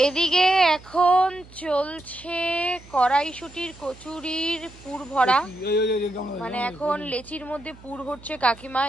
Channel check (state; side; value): noise; right; hum, 22 dB below the sound